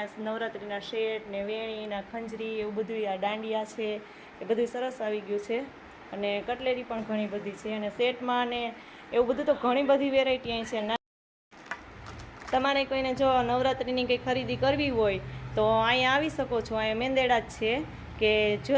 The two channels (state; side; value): identical; both; correlation 1.00